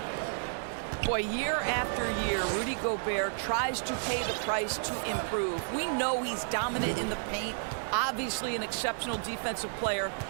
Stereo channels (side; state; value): left; silent; digital silence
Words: Boy, year after year, Rudy Gobert tries to pay the price to improve. We know he's dominant in the paint, obviously an exceptional defensive player,